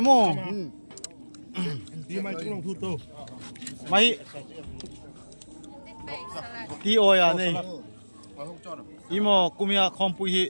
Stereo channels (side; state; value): both; inverted; correlation -1.00